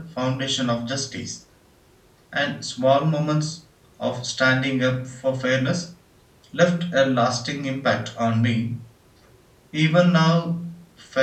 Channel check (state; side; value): identical; both; correlation 1.00